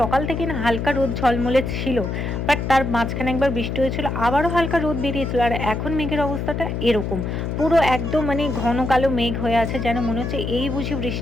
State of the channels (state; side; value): noise; left; hum, 3 dB below the sound